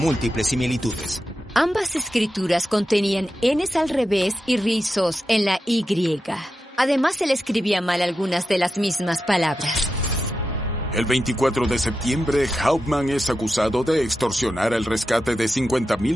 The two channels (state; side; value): normal; both; correlation 0.90